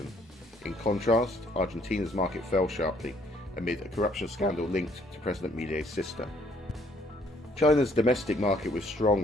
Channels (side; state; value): both; normal; correlation 0.64